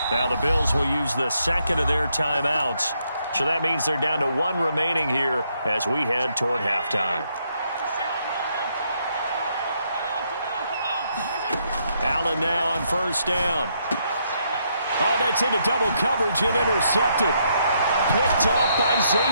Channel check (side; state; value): both; inverted; correlation -0.75